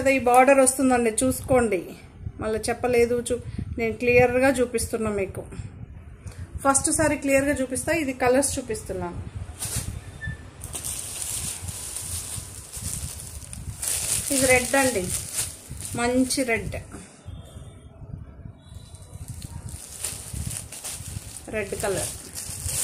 ఈ బార్డర్ వస్తుందండి, చూసుకోండి. మళ్ళీ చెప్పలేదు, నేను క్లియర్గా చూపిస్తున్నా మీకు. ఫస్ట్ సారి క్లియర్గా చూపిస్తా. ఇది కలర్స్ చూపిస్తున్నాను. ఇది రెడ్ అండి, మంచి రెడ్. Red colour.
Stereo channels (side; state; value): both; identical; correlation 1.00